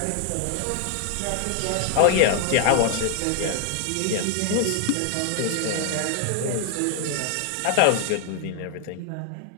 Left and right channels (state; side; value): different; both; correlation 0.00